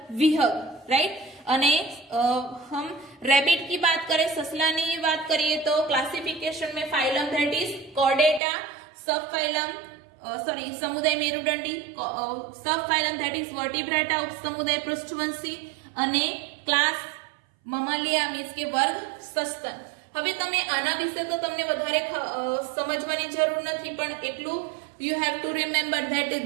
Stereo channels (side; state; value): left; drops out; at 8.4 s